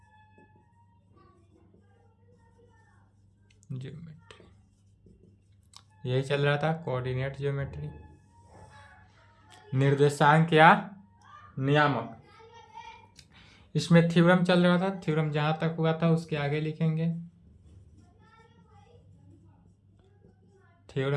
geometry, यही चल रहा था कोऑर्डिनेट ज्योमेट्री। निर्देशांक या नियामक, इसमें थ्योरम चल रहा था। थ्योरम जहां तक हुआ था उसके आगे लिखेंगे।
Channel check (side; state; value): both; identical; correlation 1.00